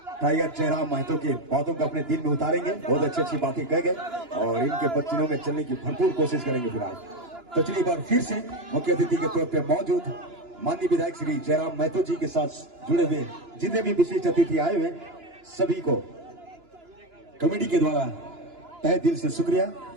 टाइगर जयराम महतो के बातों को अपने दिल में उतारेंगे, बहुत अच्छी अच्छी बातें कह गए और इनके बच्चों में चलने की भरपूर कोशिश करेंगे। फिलहाल तो चलिए बार फिर से मुख्य अतिथि के तौर पे मौजूद माननीय विधायक श्री जयराम महतो जी के साथ जुड़े हुए जितने भी विशिष्ट अतिथि आए हुए सभी को कमेटी के द्वारा तहे दिल से शुक्रिया,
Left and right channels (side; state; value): left; late; 2.9 ms